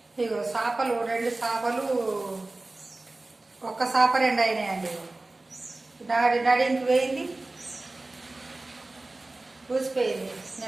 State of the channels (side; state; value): left; quieter; 3.0 dB